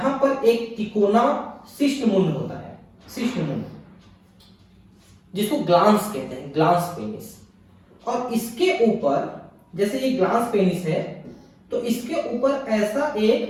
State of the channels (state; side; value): identical; both; correlation 1.00